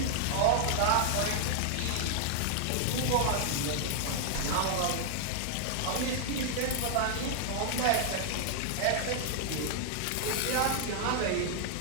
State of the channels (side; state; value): both; different; correlation 0.00